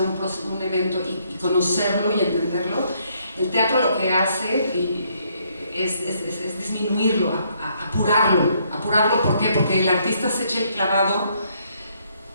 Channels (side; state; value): both; inverted; correlation -0.70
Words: un evento y conocerlo y entenderlo, el teatro lo que hace es disminuirlo, apurarlo. ¿Por qué? Porque el artista se echa el clavado,